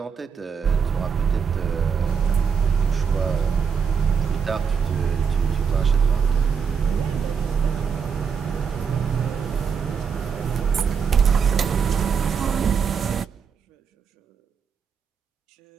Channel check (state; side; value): quieter; left; 6.5 dB